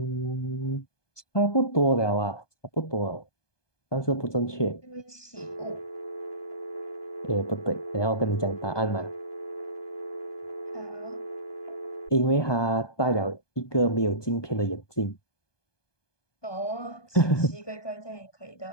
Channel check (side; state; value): right; late; 1.2 ms